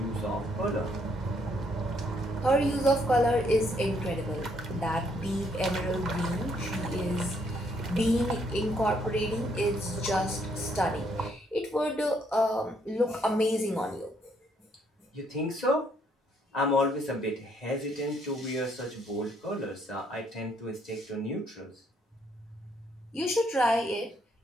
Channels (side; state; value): both; normal; correlation 0.70